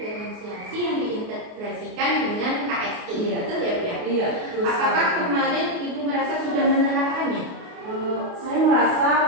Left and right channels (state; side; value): late; left; 28 ms